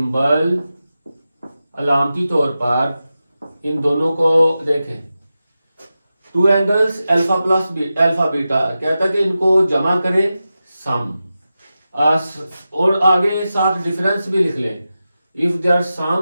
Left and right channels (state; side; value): inverted; both; correlation -0.92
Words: अलामती तौर पर इन दोनों को देखें, 2 angles alpha plus alpha beta, कहता है कि इनको जमा करें सम, और आगे साथ डिफरेंस भी लिख लें। इफ देयर